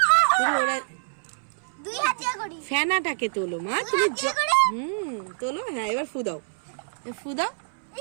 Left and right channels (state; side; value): silent; left; 61 dB below the other